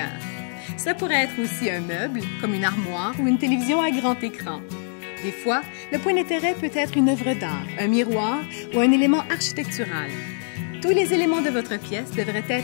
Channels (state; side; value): silent; right; digital silence